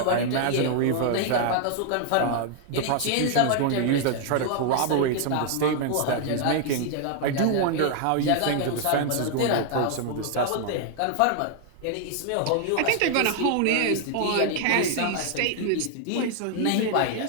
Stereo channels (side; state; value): both; different; correlation 0.00